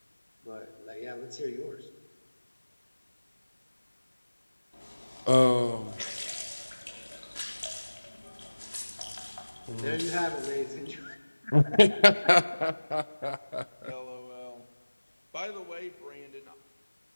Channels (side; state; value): both; inverted; correlation -1.00